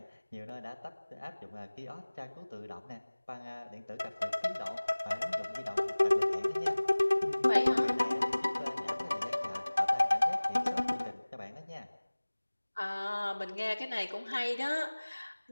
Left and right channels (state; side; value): inverted; both; correlation -1.00